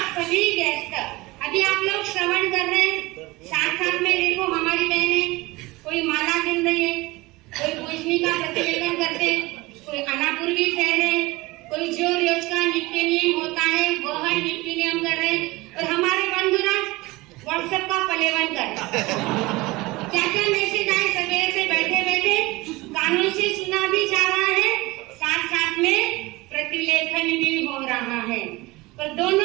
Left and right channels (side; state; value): left; quieter; 21.6 dB